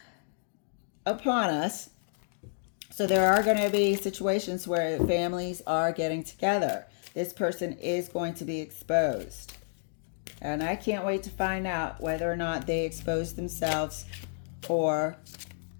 upon us. So there are going to be situations where families are getting together. This person is going to be exposed. And I can't wait to find out whether or not they expose themselves or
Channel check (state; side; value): silent; right; digital silence